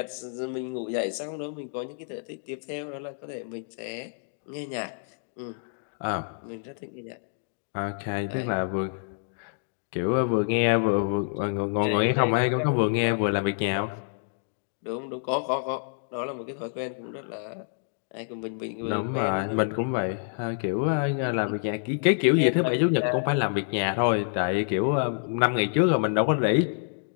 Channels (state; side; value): silent; right; digital silence